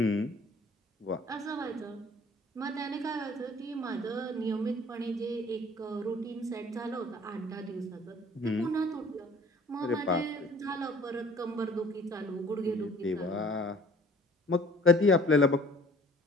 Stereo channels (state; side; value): normal; both; correlation 0.52